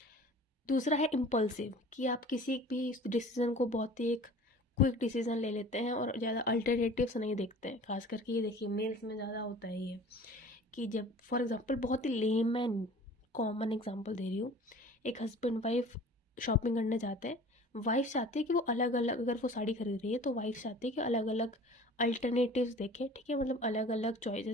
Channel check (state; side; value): normal; both; correlation 0.44